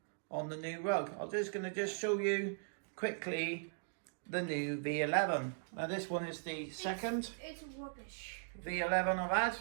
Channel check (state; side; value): silent; left; digital silence